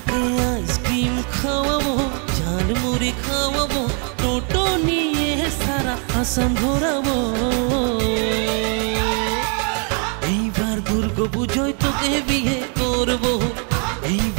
আইসক্রিম খাওয়াবো, ঝাল মুড়ি খাওয়াবো, টোটো নিয়ে সারা আসাম ঘোরাবো। এইবার দুর্গাপুজোয় তোকে বিয়ে করবো,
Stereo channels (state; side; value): quieter; left; 39.5 dB